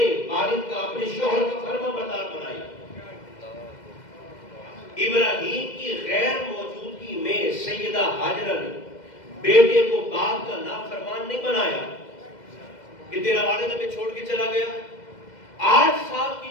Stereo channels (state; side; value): late; right; 2.1 ms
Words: والد کا اپنے شوہر کا فرما بردار بنائی۔ ابراہیم کی غیر موجودگی میں سیدہ ہاجرہ نے بیٹے کو باپ کا نافرمان نہیں بنایا کہ تیرا والد ہمیں چھوڑ کے چلا گیا۔ 8 سال